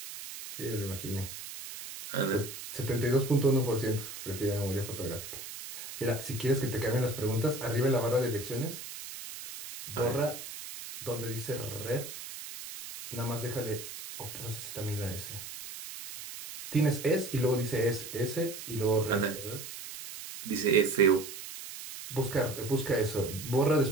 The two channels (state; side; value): noise; right; hiss, 10 dB below the sound